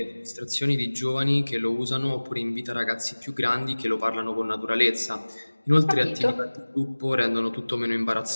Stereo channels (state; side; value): inverted; both; correlation -1.00